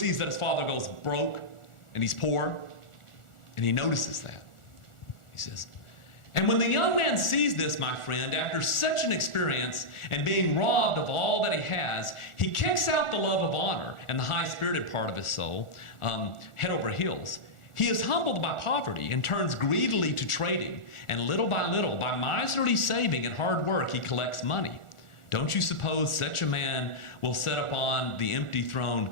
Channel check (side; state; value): right; late; 1.4 ms